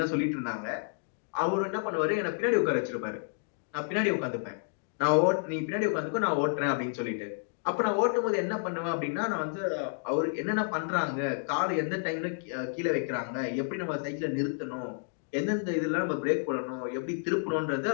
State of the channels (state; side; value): silent; right; digital silence